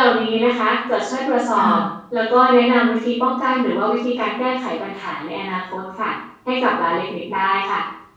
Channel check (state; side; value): identical; both; correlation 1.00